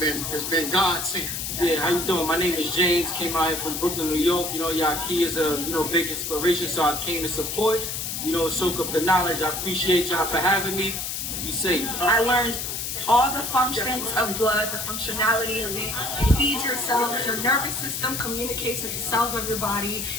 been God sent. Yeah, how you doing? My name is James. Came out here from Brooklyn, New York. You know, Yahki is a big inspiration, so I came to support. You know, soak up the knowledge. I appreciate y'all for having me. Be safe. I learned all the functions of blood, the functionality of it. It feeds your cells, your nervous system communicates with the cells of your body,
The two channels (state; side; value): noise; left; hiss, 4 dB below the sound